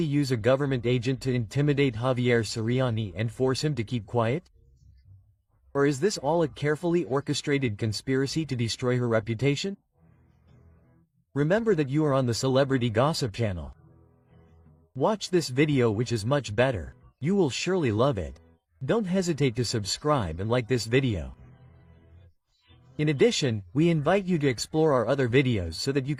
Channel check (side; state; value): both; identical; correlation 1.00